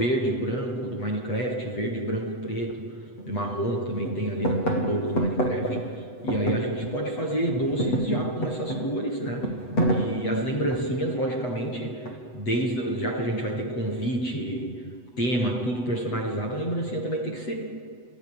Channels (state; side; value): late; right; 8.1 ms